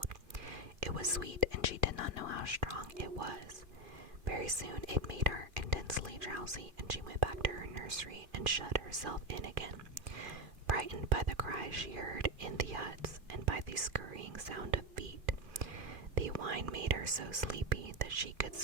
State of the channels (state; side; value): late; left; 2.5 ms